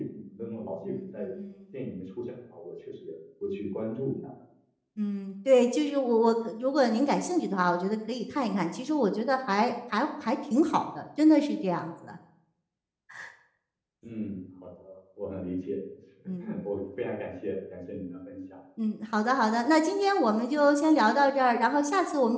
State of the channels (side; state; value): both; identical; correlation 1.00